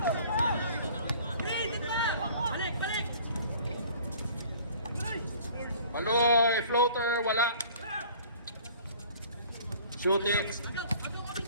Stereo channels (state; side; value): inverted; both; correlation -0.50